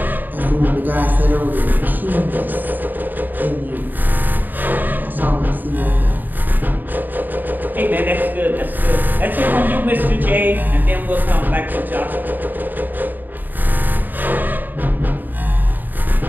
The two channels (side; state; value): left; late; 0.089 ms